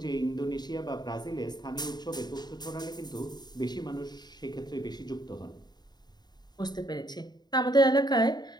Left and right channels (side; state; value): right; late; 0.20 ms